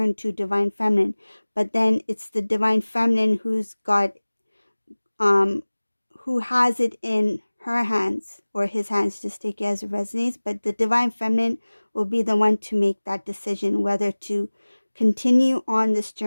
to Divine Feminine. But then it's the Divine Feminine who has it in her hands or his hands, just take it as it resonates, but the divine feminine will be the one to make that decision whether to continue on this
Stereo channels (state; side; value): inverted; both; correlation -1.00